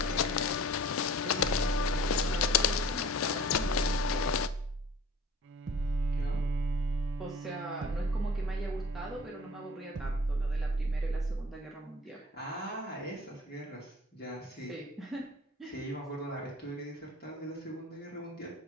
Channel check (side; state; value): both; normal; correlation 0.47